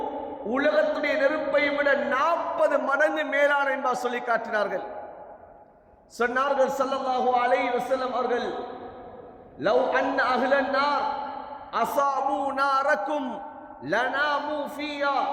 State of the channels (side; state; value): both; identical; correlation 1.00